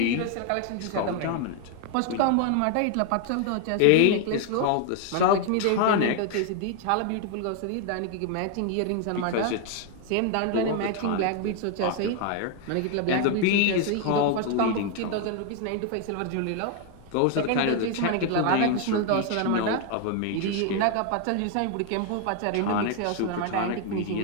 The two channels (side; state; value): both; different; correlation 0.00